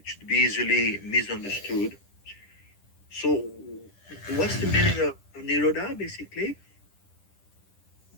should be easily misunderstood. So, what's the meaning of Nirodha basically?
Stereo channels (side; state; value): right; late; 10 ms